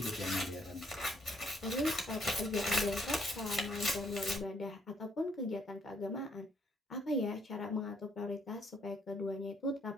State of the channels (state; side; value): normal; both; correlation 0.69